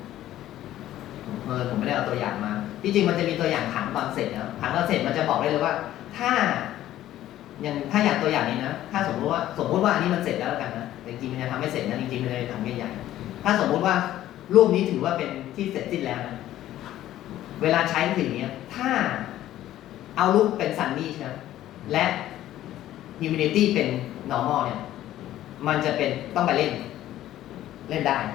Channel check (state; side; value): quieter; right; 13.4 dB